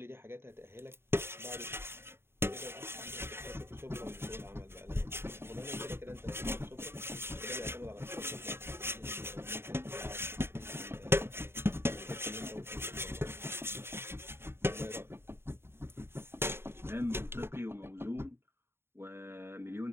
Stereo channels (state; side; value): late; left; 0.11 ms